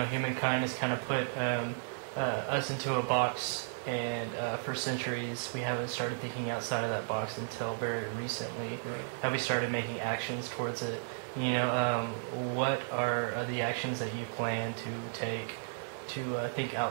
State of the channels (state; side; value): silent; left; digital silence